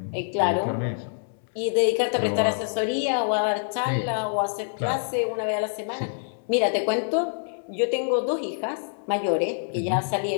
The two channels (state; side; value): silent; right; 61 dB below the other